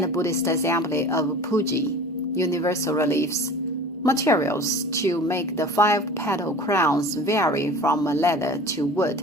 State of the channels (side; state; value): both; normal; correlation 0.40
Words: the Buddhist assembly of Puji, universal reliefs. Materials to make the 5-petal crowns vary from leather to wood.